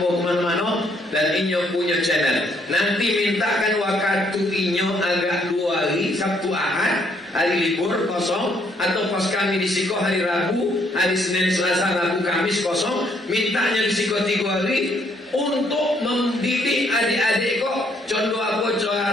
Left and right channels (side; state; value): both; normal; correlation 0.69